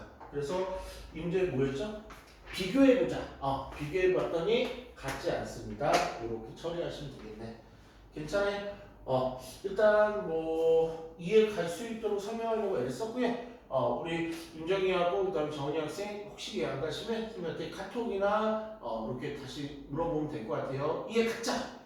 그래서 이 문제 뭐였죠? 비교해보자. 비교해봤더니 같지 않습니다. 이렇게 처리하시면 되겠네. 괜찮아요? 일단 뭐 이해 갈 수 있도록 설명하려고 애를 썼고요. 우리 윤정이하고 그다음에 정은이 학생 혹시 이해 안 가시면 선생님한테 카톡이나 이렇게 다시 물어보면 될 것 같아요. 이해 갔자.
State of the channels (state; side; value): identical; both; correlation 1.00